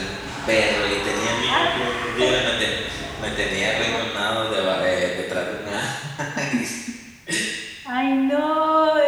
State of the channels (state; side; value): identical; both; correlation 1.00